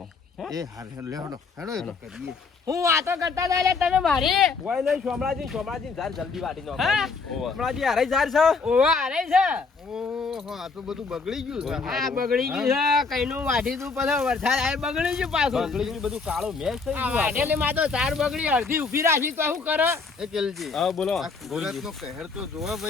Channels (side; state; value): right; quieter; 4.6 dB